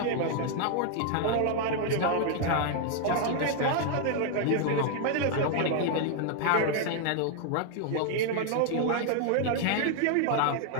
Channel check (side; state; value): both; different; correlation 0.00